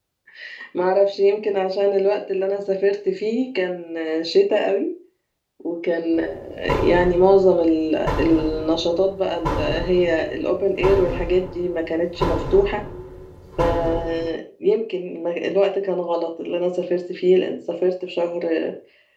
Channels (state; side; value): identical; both; correlation 1.00